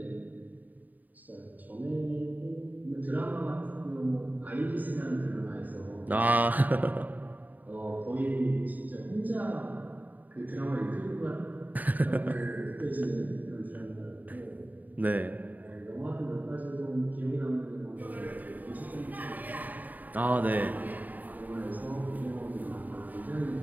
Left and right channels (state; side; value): late; left; 0.082 ms